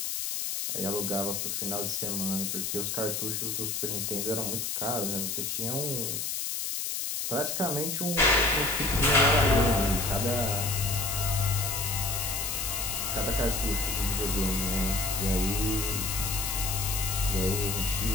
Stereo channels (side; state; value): left; noise; hiss, 2 dB below the sound